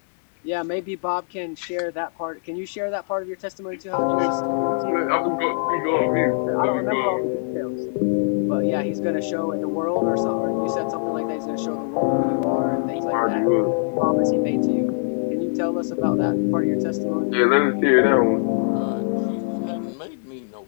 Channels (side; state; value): right; silent; digital silence